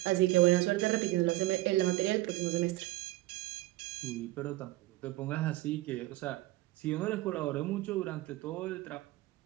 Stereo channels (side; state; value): left; quieter; 17.9 dB